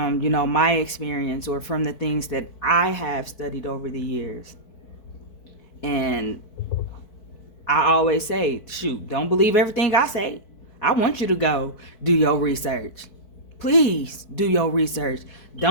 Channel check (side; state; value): right; late; 4.6 ms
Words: my experience, or from the things that I have studied over the years. And I always say, shoot, don't believe everything I say. I want you to go do your research. Please do your research.